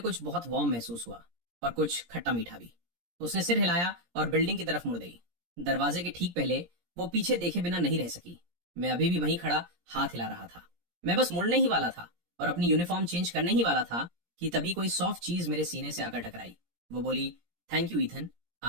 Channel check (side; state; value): left; late; 17 ms